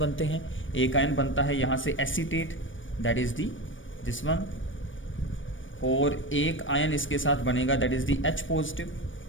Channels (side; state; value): right; late; 0.56 ms